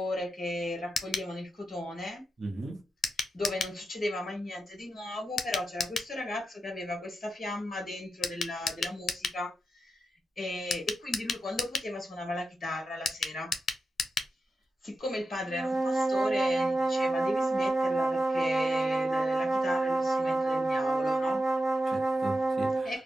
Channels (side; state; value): both; normal; correlation 0.89